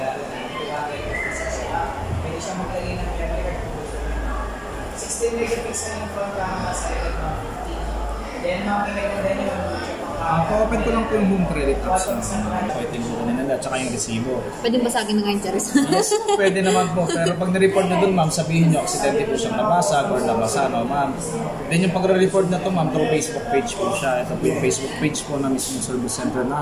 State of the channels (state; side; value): identical; both; correlation 1.00